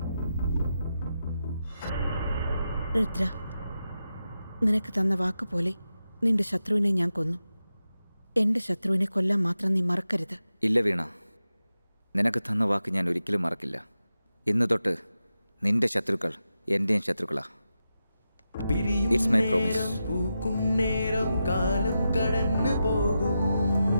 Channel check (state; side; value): inverted; both; correlation -0.90